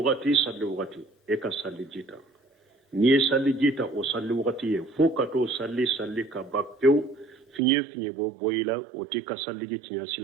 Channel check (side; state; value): left; drops out; at 7.6 s